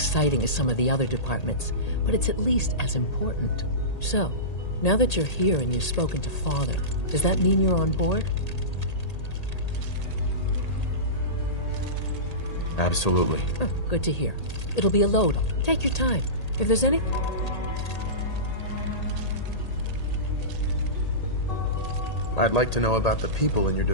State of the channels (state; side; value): late; right; 1.8 ms